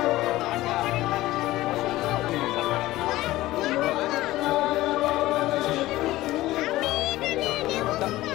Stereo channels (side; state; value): right; quieter; 16.8 dB